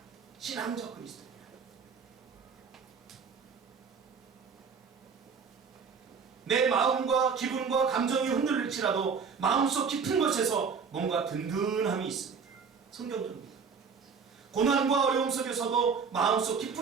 신앙적 그리스도인이다. 내 마음과 기분과 감정이 흔들릴지라도 마음속 깊은 곳에서 뭔가 든든함이 있습니다. 성경적입니다. 고난과 어려움 속에서도 마음속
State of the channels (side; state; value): left; quieter; 5.8 dB